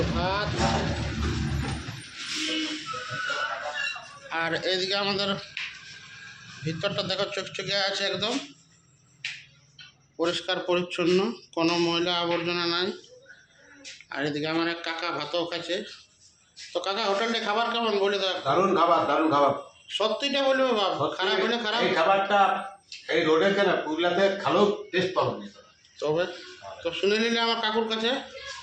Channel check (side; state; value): both; identical; correlation 1.00